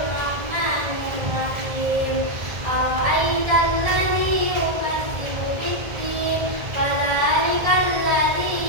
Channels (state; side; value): late; left; 1.8 ms